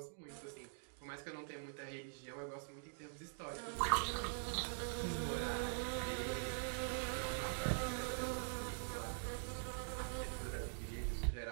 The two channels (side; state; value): left; silent; digital silence